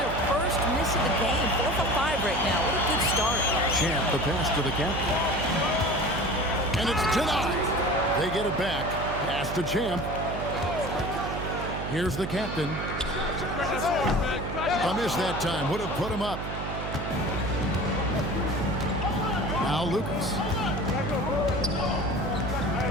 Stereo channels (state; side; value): noise; right; hum, 6 dB below the sound